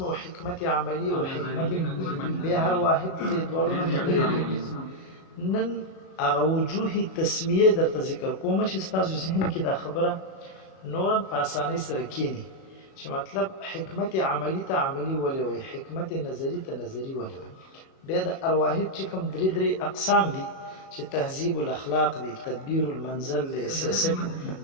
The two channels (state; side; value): late; right; 37 ms